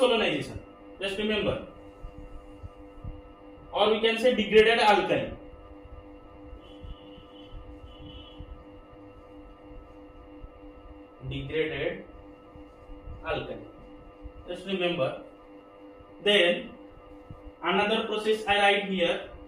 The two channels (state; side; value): identical; both; correlation 1.00